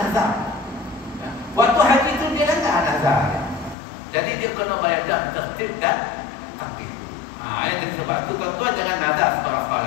Waktu haji itu dia langgar nazar. Jadi dia kena bayar dalam tertib dan takdir. Jadi sebab itu tuan-tuan jangan nazar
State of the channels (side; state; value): right; drops out; at 3.8 s